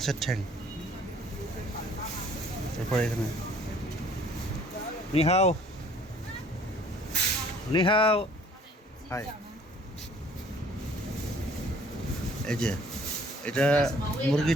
ঠ্যাং। তারপরে এখানে নিহাও নিহাও, হাই। এই যে এটা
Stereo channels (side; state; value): both; normal; correlation 0.56